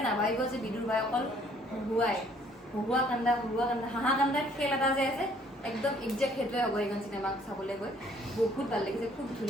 নাভাবিব যে বিদুৰ ভাই অকল হুহুৱা কান্দা হাঁহা কান্দাৰ খেল এটা যে আছে একদম একজেক্ট সেইটোৱে হ'ব এইখন চিনেমা চাবলৈ গৈ বহুত ভাল লাগিছে খুব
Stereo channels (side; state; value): both; normal; correlation 0.61